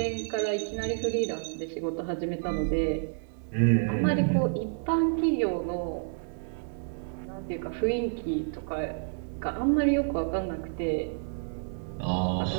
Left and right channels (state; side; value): silent; left; 58 dB below the other